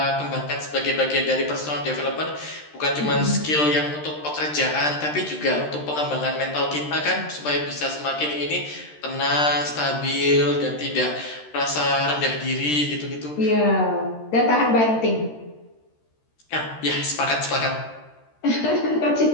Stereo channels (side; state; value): right; late; 13 ms